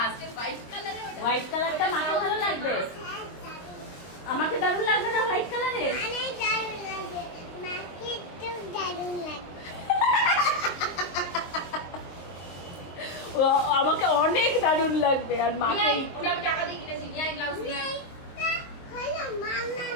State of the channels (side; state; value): right; late; 22 ms